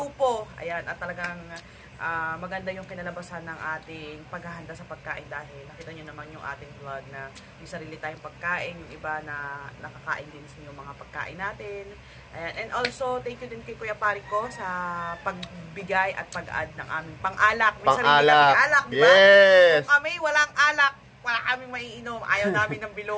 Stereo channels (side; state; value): both; identical; correlation 1.00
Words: Ayan, at talagang maganda yung kinalabasan ng ating paghahanda sa pagkain dahil nakita nyo naman yung ating vlog na may sarili tayong pagkain, yung iba na nakakain din sa yung mga pagkain natin. Ayan. And also, thank you din kay Kuya Parico sa pagbigay at pag-add ng aming pang-alak. May sarili kami alak, diba? Yes! Kung kami walang alak, wala kaming maiinom. Ayaw namin ng